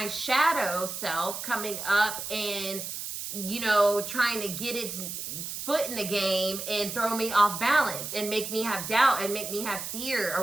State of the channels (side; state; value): right; noise; hiss, 6 dB below the sound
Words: shadow self coming up and trying to get its foot in the game and throw me off balance and make me have doubt and make me have fear